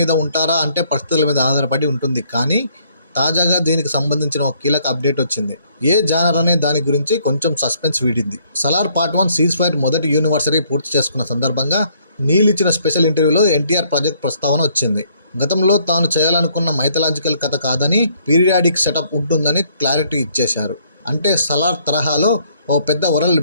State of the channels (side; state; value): both; inverted; correlation -0.66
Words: ఉంటారా అంటే పరిస్థితుల మీద ఆధారపడి ఉంటుంది. కానీ తాజాగా దీనికి సంబంధించిన ఒక కీలక అప్డేట్ వచ్చింది. ఏ జానర్ అనే దాని గురించి కొంచెం సస్పెన్స్ వీడింది. సలార్ పార్ట్ 1 సీజ్ ఫైర్ మొదటి యూనివర్సరీ పూర్తి చేసుకున్న సందర్భంగా నీల్ ఇచ్చిన స్పెషల్ ఇంటర్వ్యూలో ఎన్టీఆర్ ప్రాజెక్ట్ ప్రస్తావన వచ్చింది. గతంలో తాను చేయాలనుకున్న మైథలాజికల్ కథ కాదని పీరియాడిక్ సెటప్ ఉంటుందని క్లారిటీ ఇచ్చేశారు. అంటే సలార్ తరహాలో ఓ పెద్ద వరల్డ్